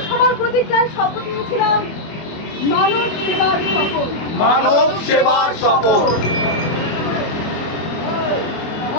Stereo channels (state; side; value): late; right; 24 ms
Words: হওয়ার প্রতিজ্ঞায় শপথ নিয়েছিলাম। মানব সেবার শপথ।